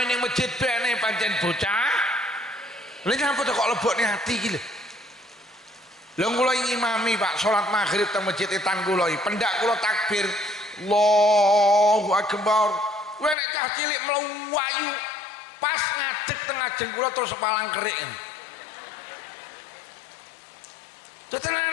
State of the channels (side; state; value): right; drops out; at 13.4 s